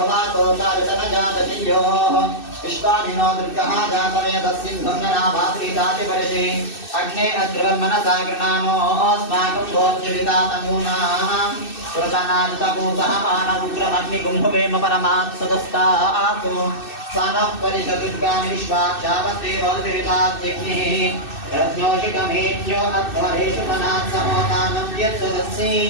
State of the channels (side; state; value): right; late; 2.6 ms